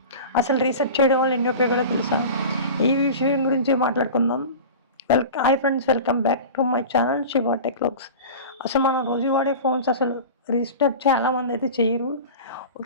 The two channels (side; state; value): both; inverted; correlation -0.33